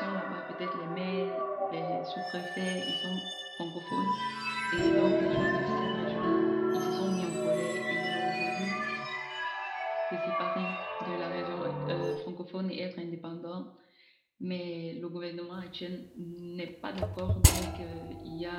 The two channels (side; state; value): both; identical; correlation 1.00